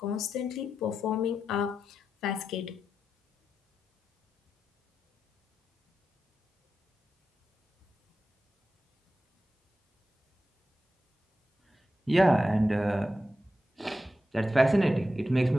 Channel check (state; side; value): normal; both; correlation 0.89